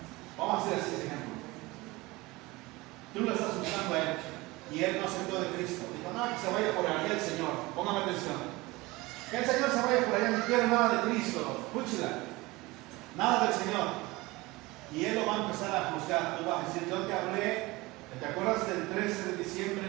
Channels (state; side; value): quieter; left; 21.6 dB